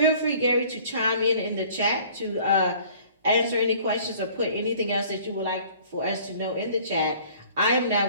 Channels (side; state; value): both; inverted; correlation -0.52